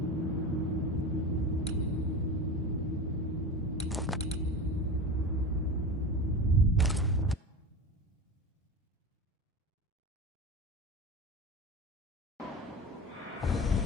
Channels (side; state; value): both; normal; correlation 0.29